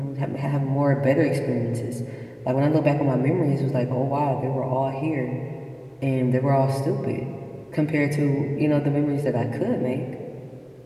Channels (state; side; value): identical; both; correlation 1.00